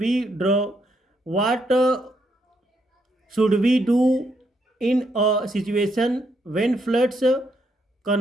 we do in a situation when floods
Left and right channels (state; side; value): normal; both; correlation 0.76